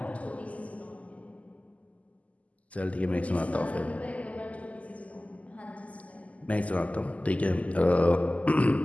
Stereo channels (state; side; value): late; right; 0.071 ms